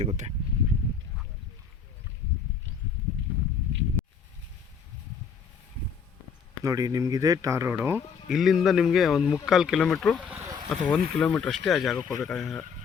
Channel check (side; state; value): right; quieter; 6.1 dB